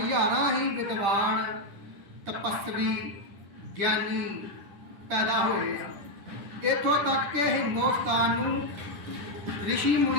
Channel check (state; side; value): late; left; 10 ms